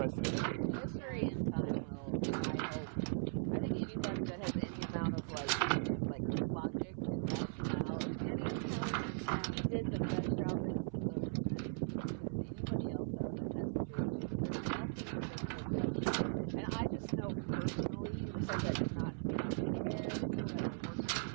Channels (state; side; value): silent; left; 52 dB below the other